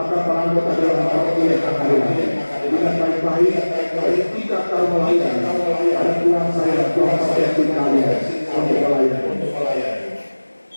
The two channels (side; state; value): both; inverted; correlation -1.00